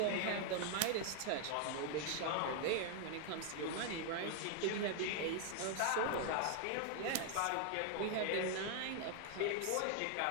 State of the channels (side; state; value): both; different; correlation 0.00